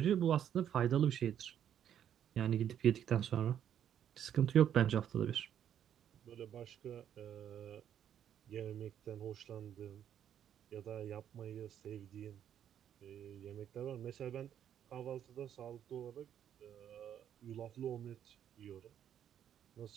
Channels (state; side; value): quieter; left; 9.7 dB